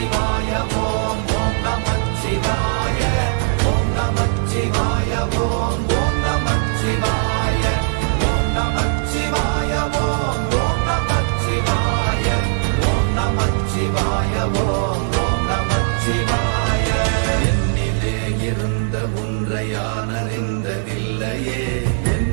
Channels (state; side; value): silent; left; digital silence